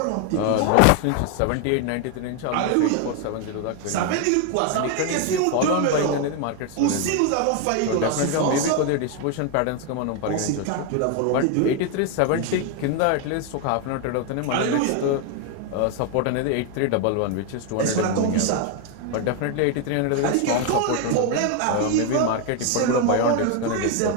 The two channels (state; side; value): different; both; correlation 0.01